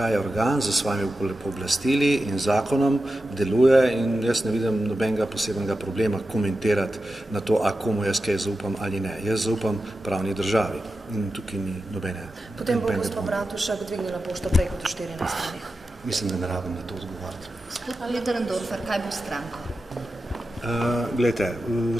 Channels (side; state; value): both; normal; correlation 0.92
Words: je organ za svojimi pooblastili in zakonom deluje in jaz ne vidim nobenega posebnega problema komentirati na to, a komu jaz kaj zaupam ali ne. Jaz zaupam pravni državi in tukaj ni nobene. Potem bo gospod Bratušek dvignila pošto prej kot v 14 dneh. Mislim, da ne rabim na to odgovarjati. Gospod Lederendorfer, kaj bo s stranko? Glejte,